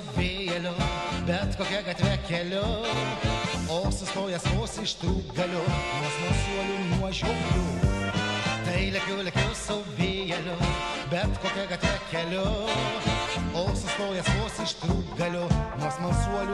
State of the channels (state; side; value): identical; both; correlation 1.00